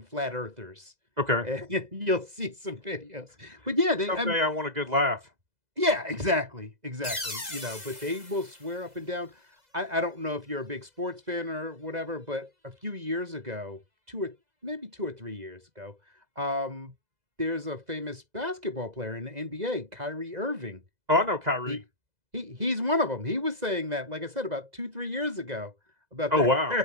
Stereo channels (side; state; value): left; late; 2.0 ms